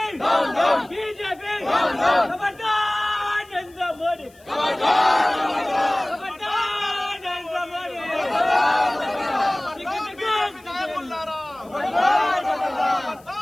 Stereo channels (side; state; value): left; noise; hiss, 28 dB below the sound